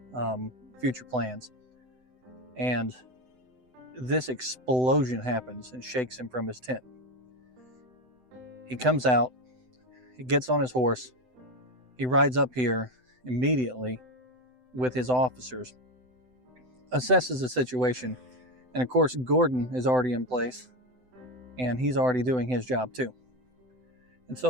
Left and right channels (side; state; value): left; late; 7.9 ms